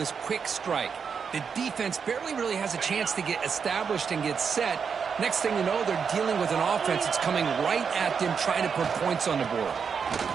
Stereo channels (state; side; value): quieter; left; 6.3 dB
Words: quick strike. The defense barely really has a chance to get established and get set. Next thing you know, they're dealing with an offense that's coming right at them, trying to put points on the board.